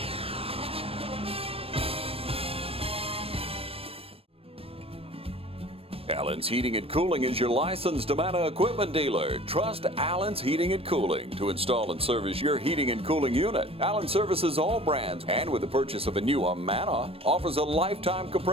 Allen's Heating and Cooling is your licensed Amana equipment dealer. Trust Allen's Heating and Cooling to install and service your heating and cooling unit. Allen services all brands, and with the purchase of a new Amana, offers a lifetime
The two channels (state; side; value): late; left; 0.28 ms